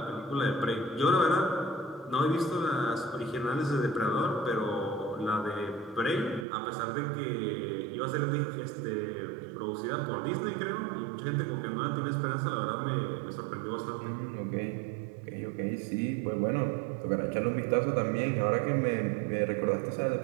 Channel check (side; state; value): left; drops out; at 6.5 s